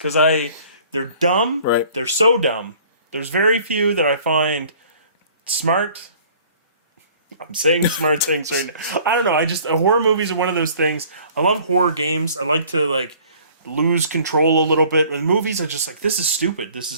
they're dumb. Right. They're so dumb. There's very few that I find smart. I'm saying smart things right now. I don't know. Horror movies are one of those things. I love horror games. I like to lose control a little bit. And movies are just this is stupid. This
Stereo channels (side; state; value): both; inverted; correlation -0.53